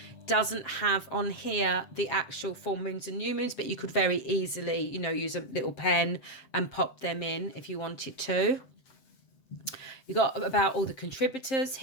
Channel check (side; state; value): right; late; 7.5 ms